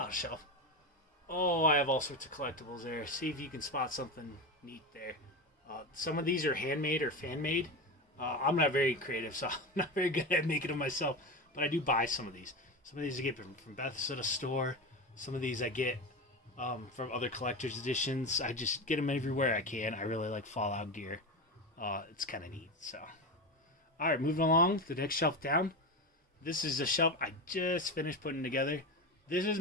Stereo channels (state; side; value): normal; both; correlation 0.20